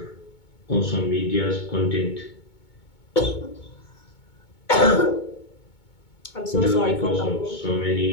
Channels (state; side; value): late; right; 2.2 ms